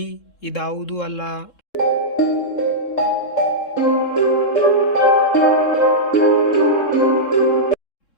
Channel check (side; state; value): right; late; 3.7 ms